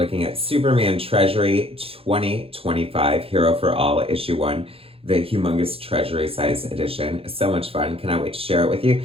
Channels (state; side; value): late; left; 0.27 ms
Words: at Superman Treasury 2025, Hero for All, Issue 1, the humongous Treasury size edition. So much fun. Cannot wait to share it with you.